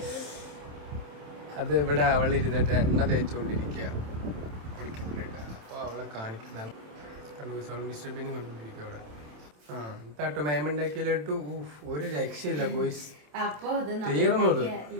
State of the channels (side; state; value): left; late; 27 ms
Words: അത് ഇവിടെ അവൾ ഇരുന്നിട്ട് എണ്ണ തേച്ചുകൊണ്ടിരിക്കുക കുളിക്കുന്നുണ്ട്. അപ്പോൾ അവളെ കാണിക്കുന്നതാണ്. മിസ്റ്റർ ബീനും കണ്ടുകൊണ്ടിരിക്കുക അവിടെ. കേട്ടോ മാമുണ്ടാക്കിയ ലഡു ഒരു രക്ഷയില്ല ഗോയ്സ്. അപ്പൊ ഇത് തീർന്നത്